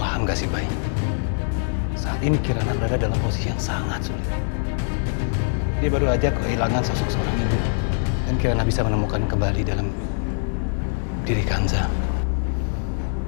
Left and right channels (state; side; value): silent; right; digital silence